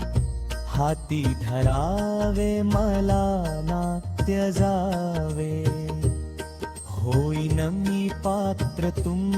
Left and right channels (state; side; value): identical; both; correlation 1.00